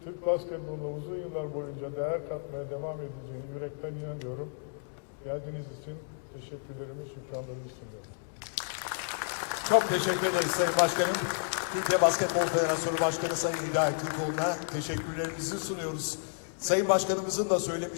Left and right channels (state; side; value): silent; right; digital silence